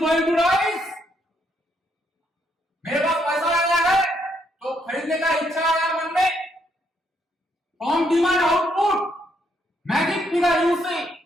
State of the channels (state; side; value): normal; both; correlation 0.74